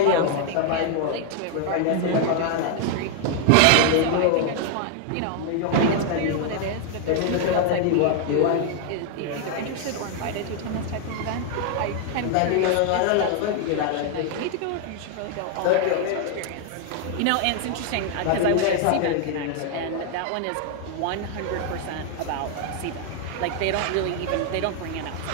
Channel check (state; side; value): different; both; correlation 0.00